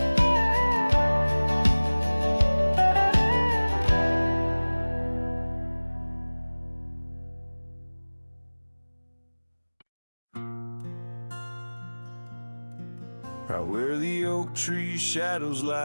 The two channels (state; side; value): inverted; both; correlation -1.00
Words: Right where the oak tree shadows